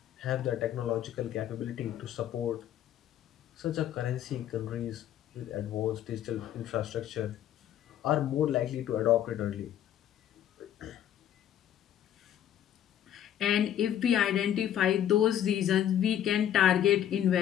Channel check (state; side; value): quieter; right; 10.8 dB